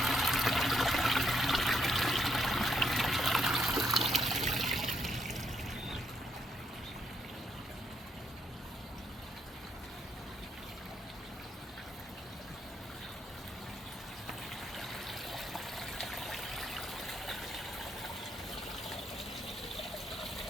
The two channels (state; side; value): normal; both; correlation 0.75